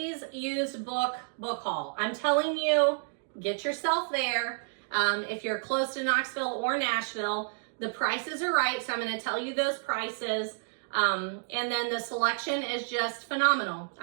used book haul. I'm telling you, get yourself there. If you're close to Knoxville or Nashville, the prices are right. So I'm going to tell you those prices. And then the selection is just phenomenal.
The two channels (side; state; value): left; silent; digital silence